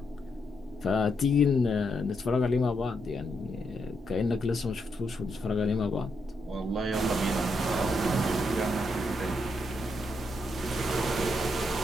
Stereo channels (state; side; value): normal; both; correlation 0.80